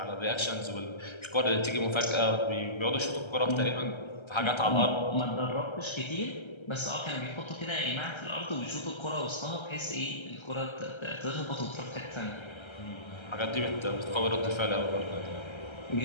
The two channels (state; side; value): late; right; 1.3 ms